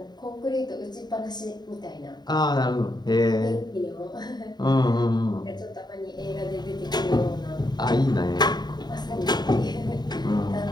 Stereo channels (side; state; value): right; late; 0.20 ms